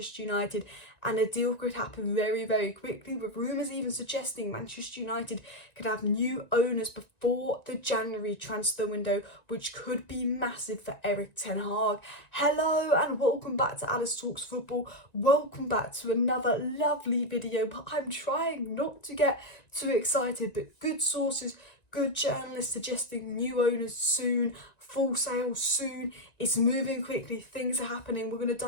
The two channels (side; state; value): right; late; 1.9 ms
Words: United, and a deal could happen very, very quickly, with rumours even suggesting Manchester United could have new owners before the January transfer window, which could be massive for Erik ten Hag. Hello and welcome back to Alice Talks Football. Welcome back to another lovely video, but I'm trying not to get too excited, but good sources, good journalists suggesting new owners soon, full sale soon. It's moving quickly, things are happening. We're going to